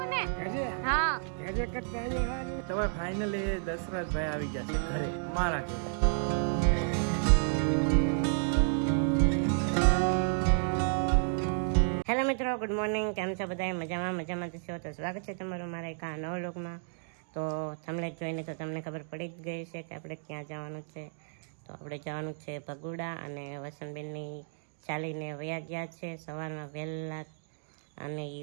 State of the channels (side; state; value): left; silent; digital silence